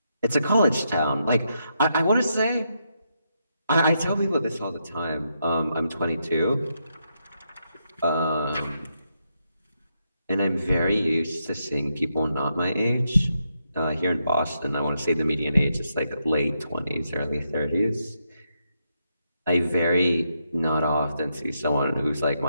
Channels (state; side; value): inverted; both; correlation -0.81